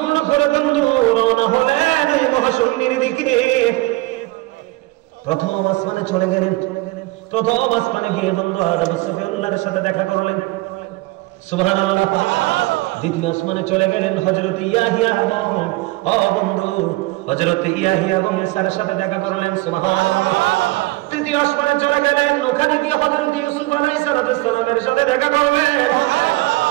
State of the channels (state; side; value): quieter; left; 21.2 dB